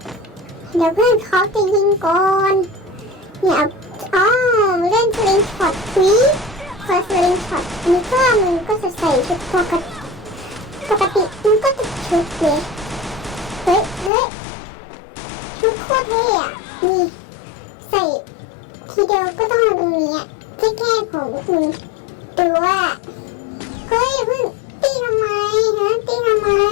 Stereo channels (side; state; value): right; drops out; at 14.1 s